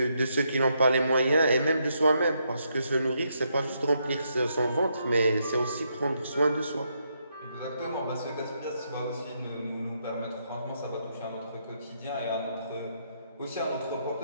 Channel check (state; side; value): inverted; both; correlation -0.77